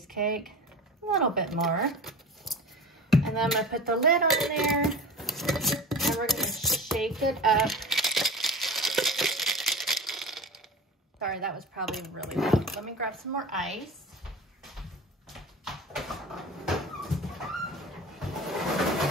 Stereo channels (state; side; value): normal; both; correlation 0.34